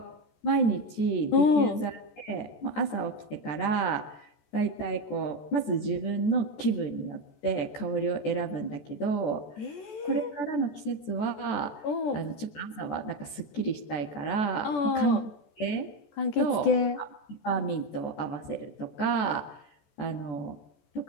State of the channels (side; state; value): right; late; 14 ms